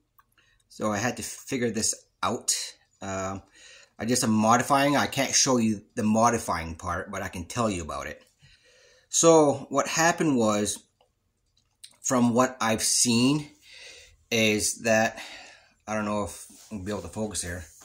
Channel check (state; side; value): identical; both; correlation 1.00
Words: so I had to figure this out. I did some modifying. I can't show you the modifying part, but I can tell you about it. So what happened was, from what I've seen, is that, I don't know if I'll be able to focus here,